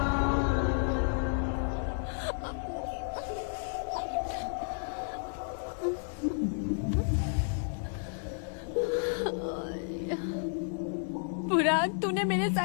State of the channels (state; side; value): silent; right; digital silence